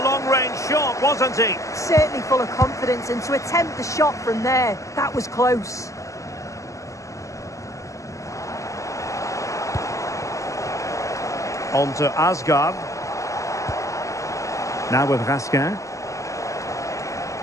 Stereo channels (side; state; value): right; late; 0.16 ms